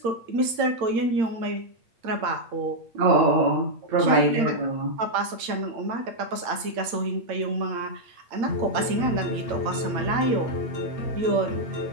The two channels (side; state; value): left; late; 8.8 ms